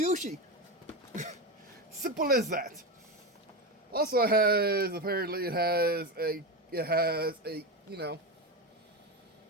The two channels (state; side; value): normal; both; correlation 0.17